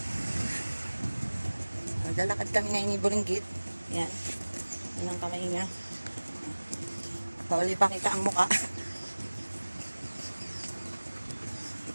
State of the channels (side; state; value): both; inverted; correlation -1.00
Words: Naglalakad kami ngayon ni Buringgit. Yan, yan ang kamay niya. Huli pa kita ang muka.